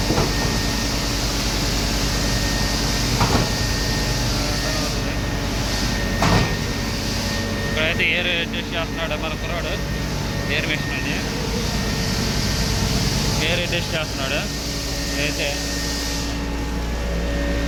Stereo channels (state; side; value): identical; both; correlation 1.00